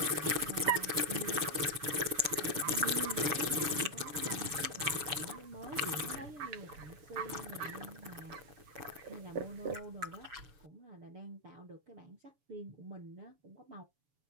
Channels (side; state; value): left; late; 7.0 ms